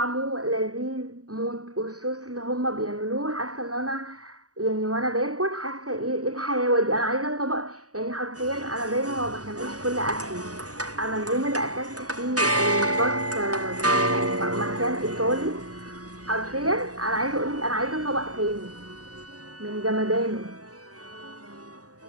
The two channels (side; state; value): left; late; 0.67 ms